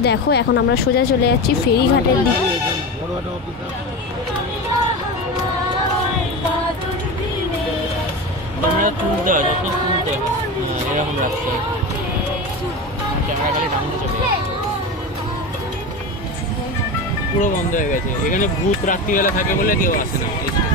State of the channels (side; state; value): both; normal; correlation 0.24